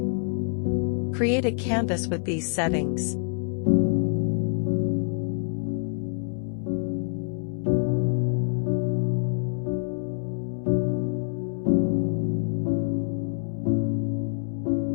Create a canvas with these settings.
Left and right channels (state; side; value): silent; right; digital silence